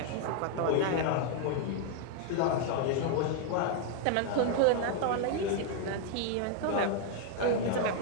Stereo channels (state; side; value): different; both; correlation 0.00